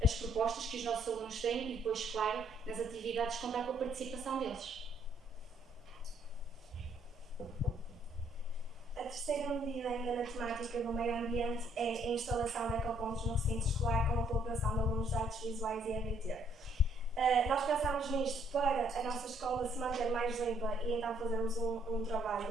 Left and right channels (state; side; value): normal; both; correlation 0.66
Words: as propostas que os nossos alunos têm e depois, claro, nas atividades contar com a participação deles. A terceira medida ainda na temática do meio ambiente é a instalação de ecopontos no recinto escolar com a colaboração de alunos de artes visuais e EVT. Nós pensámos nisto para a nossa escola se manter mais limpa e então fazermos um